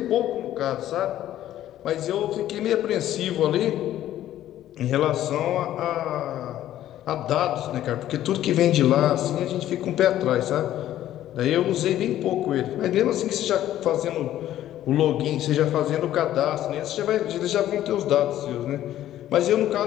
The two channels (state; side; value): quieter; right; 12.7 dB